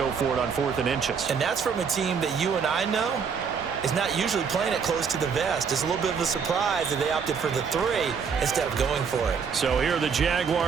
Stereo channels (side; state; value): left; quieter; 6.3 dB